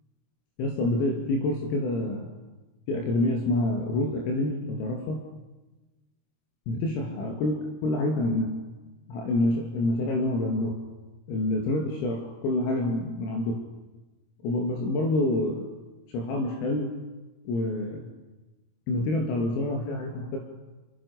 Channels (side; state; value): right; late; 26 ms